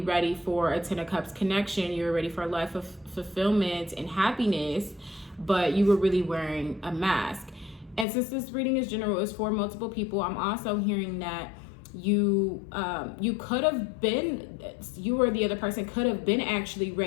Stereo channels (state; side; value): drops out; right; at 8.1 s